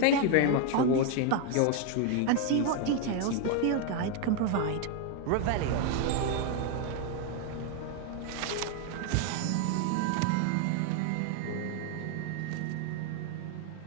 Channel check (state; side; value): different; both; correlation 0.01